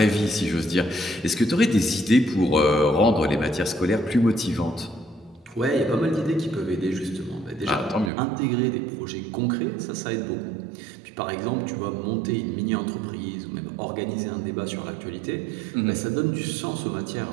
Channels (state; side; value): drops out; left; at 8.1 s